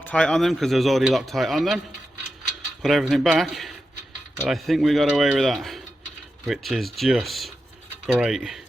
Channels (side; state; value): both; normal; correlation 0.89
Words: on them because there's already Loctite on them. Put everything back. But I think we got away with that, which is just great